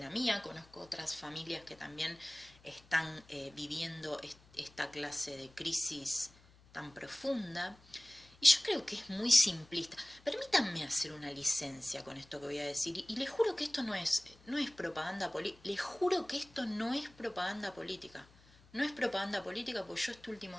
mía, conozco otras familias que también están viviendo esta clase de crisis tan profunda. Y yo creo que es muy simplista. Permítanme hacer una licencia con esto que voy a decir. Y les juro que esto no es propaganda política. Les juro que esto no es propaganda política. No es propaganda política porque yo este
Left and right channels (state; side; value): noise; left; hum, 26 dB below the sound